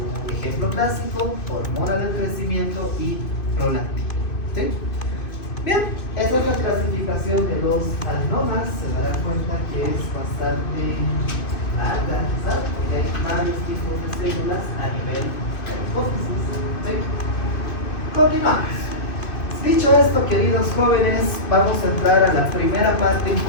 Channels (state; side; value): late; right; 2.5 ms